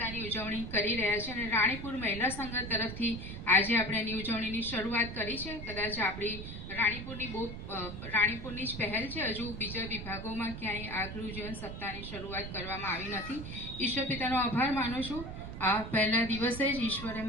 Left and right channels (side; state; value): right; noise; rumble, 8 dB below the sound